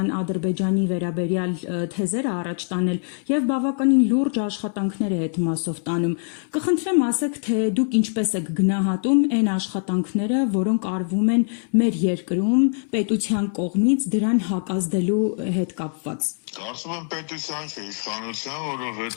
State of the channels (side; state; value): right; silent; 63 dB below the other